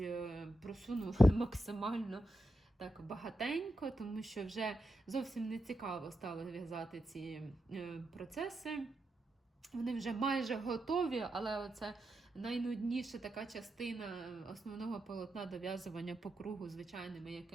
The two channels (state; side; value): normal; both; correlation 0.87